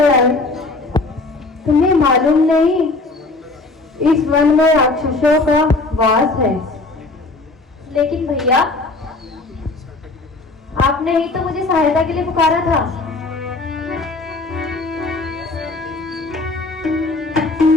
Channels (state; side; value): quieter; right; 3.3 dB